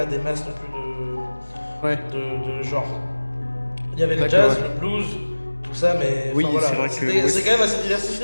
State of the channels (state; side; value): inverted; both; correlation -1.00